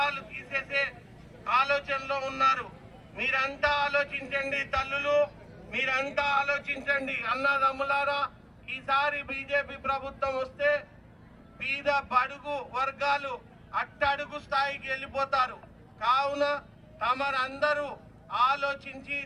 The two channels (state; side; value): identical; both; correlation 1.00